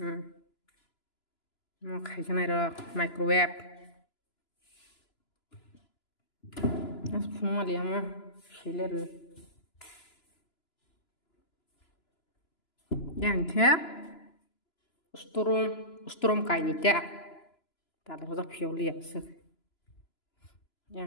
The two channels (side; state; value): right; late; 2.9 ms